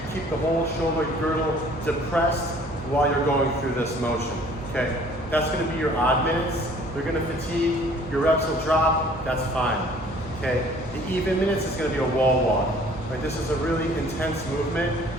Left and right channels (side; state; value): both; normal; correlation 0.54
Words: keep the whole shoulder girdle depressed while you're going through this motion, okay? That's gonna be your odd minutes. They're gonna fatigue, your reps will drop, that's fine, okay? The even minutes is gonna be a wall walk, right? This is a really intense movement,